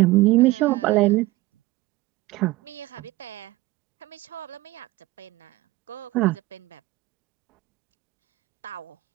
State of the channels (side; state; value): left; quieter; 19.5 dB